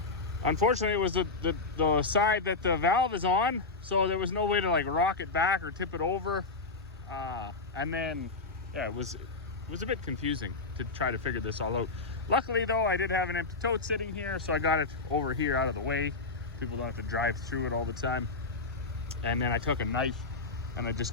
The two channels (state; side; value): quieter; right; 3.8 dB